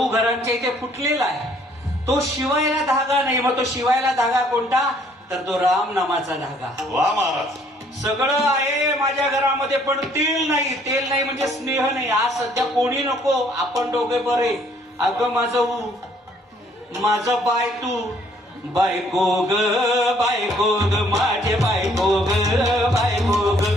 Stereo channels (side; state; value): both; normal; correlation 0.63